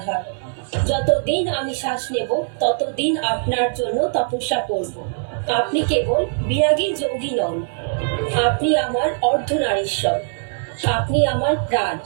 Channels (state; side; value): silent; left; 60 dB below the other